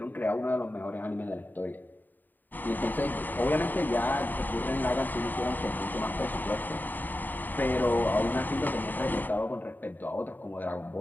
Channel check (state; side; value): late; right; 0.089 ms